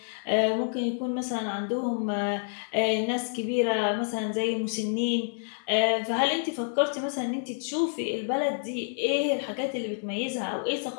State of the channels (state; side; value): silent; right; digital silence